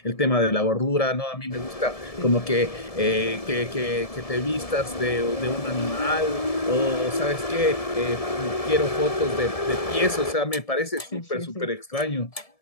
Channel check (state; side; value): late; right; 1.7 ms